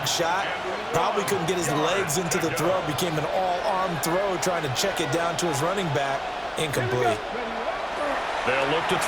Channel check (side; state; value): both; identical; correlation 1.00